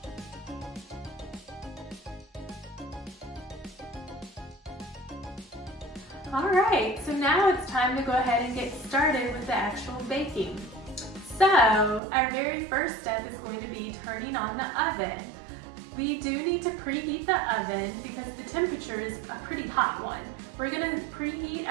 Alright, so now it's time to go ahead and get started with the actual baking. So, our very first step is going to be turning on the oven. We do need to preheat the oven because the temperature is a pretty hot one. We're going to preheat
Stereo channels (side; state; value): left; drops out; at 12.0 s